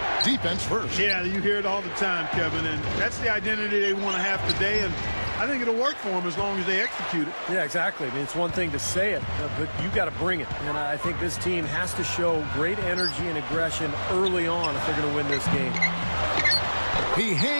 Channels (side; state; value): both; inverted; correlation -1.00